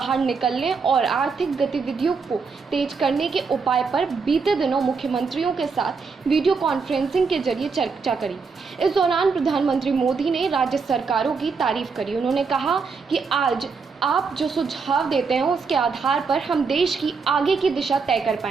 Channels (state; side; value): quieter; left; 5.0 dB